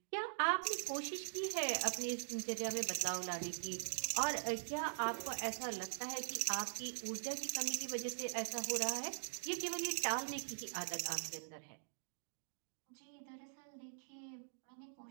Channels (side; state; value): left; silent; digital silence